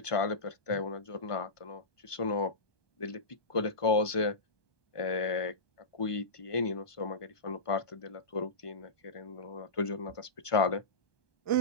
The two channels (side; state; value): right; late; 1.5 ms